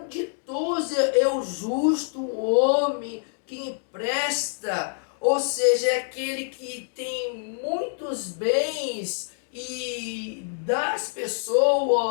ditoso é o justo, o homem que empresta, ou seja, é aquele que tem muitos bens e dá às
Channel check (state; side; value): silent; right; digital silence